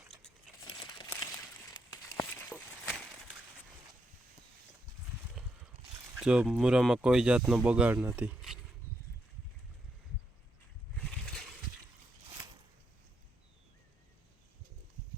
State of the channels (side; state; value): both; normal; correlation 0.80